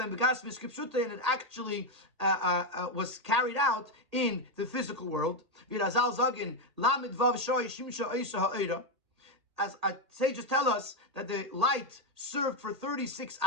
it actually was carried out in the physical world. As our sages tell us that the light served for 36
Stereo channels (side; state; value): left; late; 1.8 ms